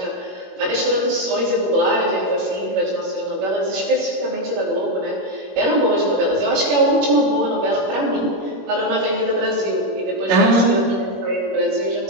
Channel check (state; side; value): late; left; 21 ms